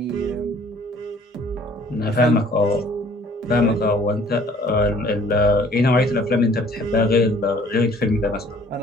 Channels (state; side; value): normal; both; correlation 0.55